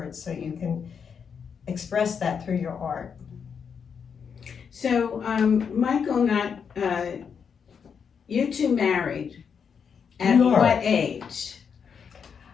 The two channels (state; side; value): quieter; right; 6.7 dB